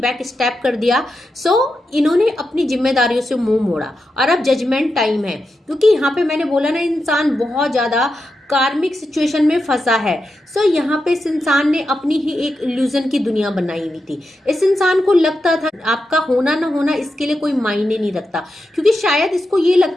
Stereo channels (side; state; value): both; normal; correlation 0.88